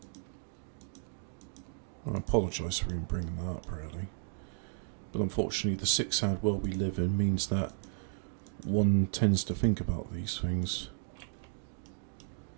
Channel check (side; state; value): left; silent; 55 dB below the other